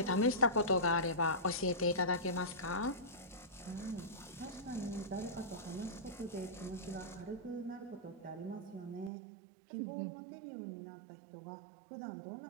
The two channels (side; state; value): left; drops out; at 9.1 s